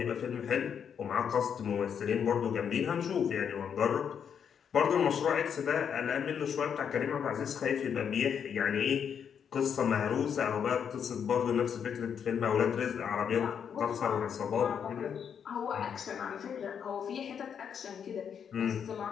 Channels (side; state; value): right; quieter; 7.7 dB